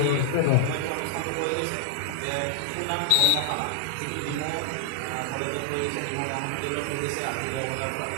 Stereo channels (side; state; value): both; different; correlation -0.01